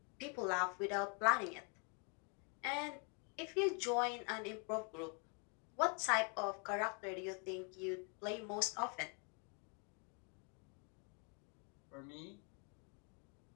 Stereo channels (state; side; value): quieter; right; 37.2 dB